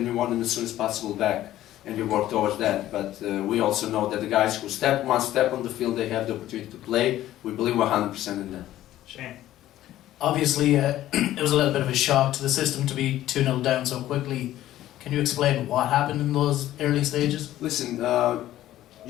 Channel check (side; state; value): right; quieter; 13.8 dB